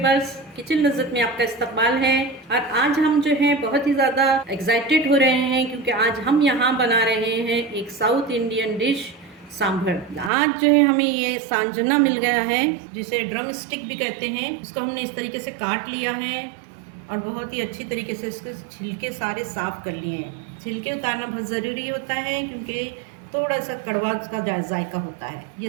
kitchen लज़्ज़त में आपका इस्तकबाल है। और आज हम जो है बहुत ही ज़्यादा एक्साइटेड हो रहे हैं क्योंकि आज हम यहाँ बना रहे हैं एक साउथ इंडियन डिश सांभर। आज जो है हमें ये सांजना मिल गया है जिसे ड्रम स्टिक भी कहते हैं। इसको हमने इस तरीके से काट लिया है और बहुत ही अच्छी तरीके से इसके छिलके सारे साफ़ कर लिए हैं। छिलके उतारना बहुत ज़रूरी होता है क्योंकि थोड़ा सा कड़वा का जायका होता है। ये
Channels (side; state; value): left; drops out; at 10.3 s